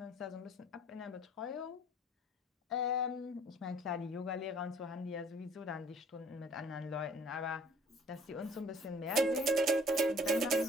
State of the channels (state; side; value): normal; both; correlation 0.55